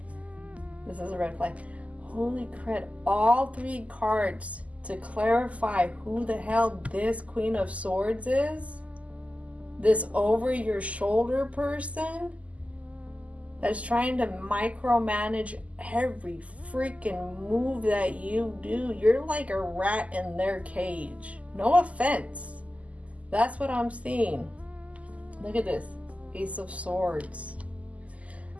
a red flag. Holy crap, all three cards to clarify who the hell this Queen of Swords is. This over your shoulder person that's trying to micromanage every freaking move that you do. You're like a rat in their cage. No offense. That's what I'm seeing. Look at this. Ace of Swords.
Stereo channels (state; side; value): late; left; 0.069 ms